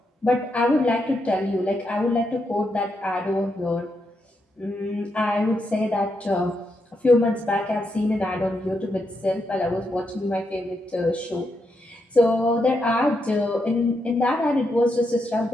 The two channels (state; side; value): normal; both; correlation 0.82